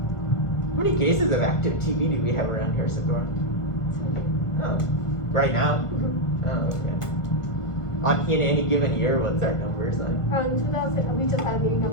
How many cases of active TB do we have around here, Sador? Oh, right now? Oh, okay. In any given year, what's our numbers like? 2000, we just had a meeting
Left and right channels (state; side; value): late; right; 1.5 ms